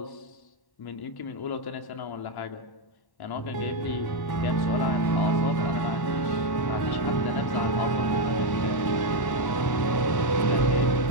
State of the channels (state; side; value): late; right; 1.1 ms